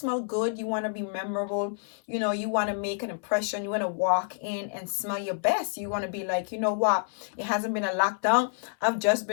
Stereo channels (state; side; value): silent; right; 59 dB below the other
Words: good. You want to be memorable. You want to make an impression. You want to walk in and smell your best. You want to be like, you know what? It hasn't been a lockdown. I've just